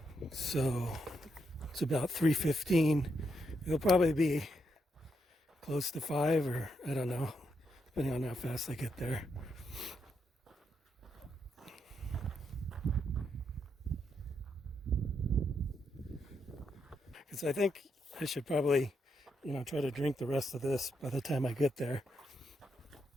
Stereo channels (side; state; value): both; normal; correlation 0.80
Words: so it's about 3:15. It'll probably be close to 5, or I don't know, depending on how fast I get there. Because I think I should probably, try to drink the rest of this by the time I get there.